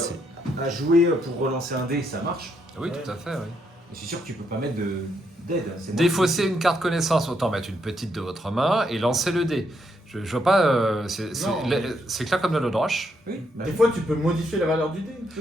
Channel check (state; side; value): normal; both; correlation 0.76